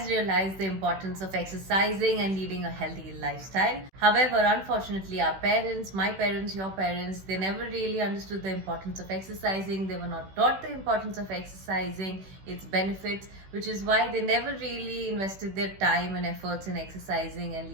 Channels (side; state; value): left; late; 16 ms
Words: realized the importance of exercising and leading a healthy lifestyle. However, unfortunately, our parents, my parents, your parents, they never really understood the importance of exercising. They were not taught the importance of exercising, its benefits, which is why they never really invested their time and efforts in exercising and